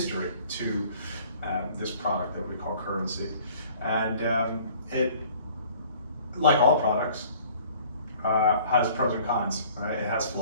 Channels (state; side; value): inverted; both; correlation -0.53